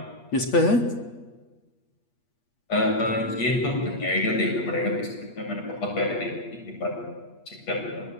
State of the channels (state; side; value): late; right; 8.4 ms